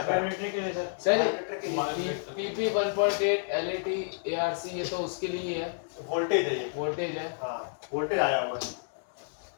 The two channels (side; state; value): right; silent; digital silence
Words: सर PP 1.8 LAT ARC ये तो उसके लिए है, वोल्टेज है ये। वोल्टेज है। हाँ, वोल्टेज आया हुआ है।